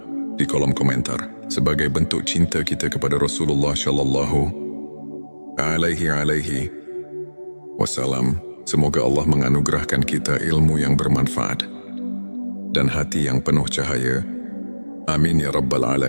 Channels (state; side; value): inverted; both; correlation -1.00